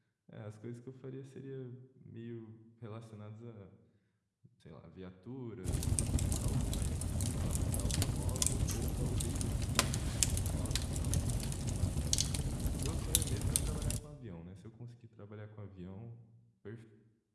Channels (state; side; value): identical; both; correlation 1.00